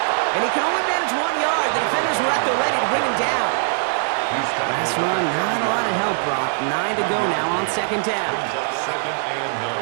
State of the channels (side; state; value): left; silent; digital silence